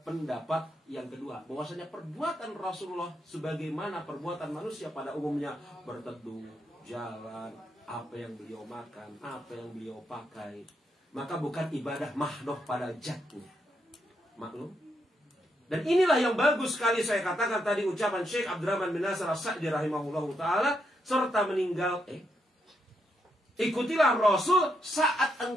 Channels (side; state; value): both; normal; correlation 0.80